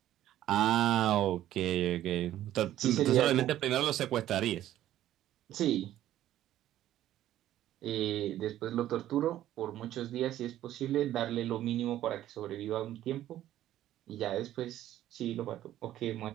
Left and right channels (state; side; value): quieter; left; 13.0 dB